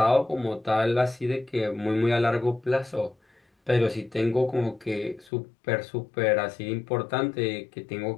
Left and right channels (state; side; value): drops out; right; at 5.3 s